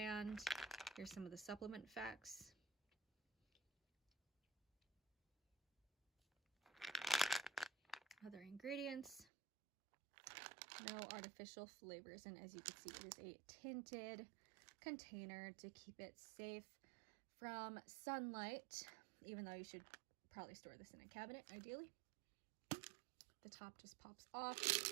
Here's some of the supplement facts. Other ingredients, no artificial flavors, and as you can see, it is a tinted container to keep it safe from sunlight, even though you should probably store this in a cabinet ideally. The top just pops off.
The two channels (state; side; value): drops out; left; at 9.2 s